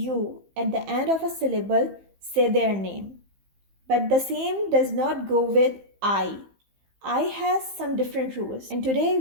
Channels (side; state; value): left; late; 15 ms